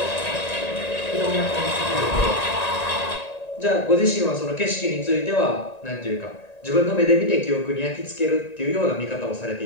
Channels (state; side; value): late; right; 1.9 ms